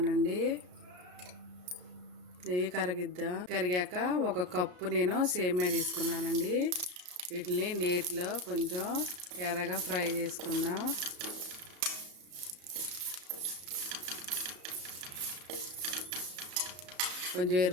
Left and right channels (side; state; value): left; late; 33 ms